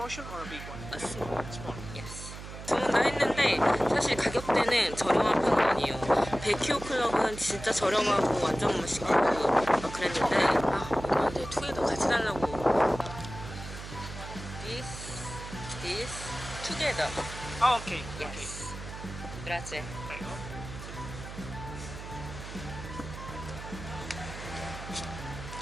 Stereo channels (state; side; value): noise; right; hum, 11 dB below the sound